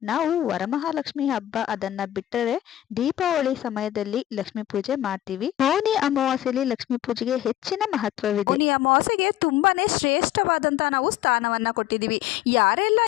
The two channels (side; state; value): right; quieter; 13.2 dB